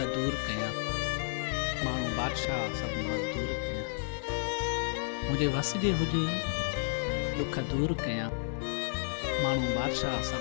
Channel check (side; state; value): right; silent; digital silence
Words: दूर कयां, माण्हू बादशाह सभु मज़दूर कयां। मुंहिंजे वस जे हुजे ॾुख दूर कयां, माण्हू बादशाह